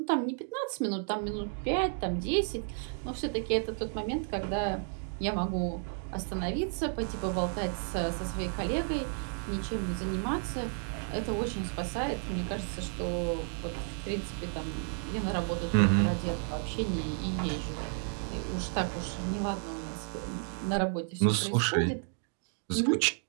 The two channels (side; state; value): left; silent; 56 dB below the other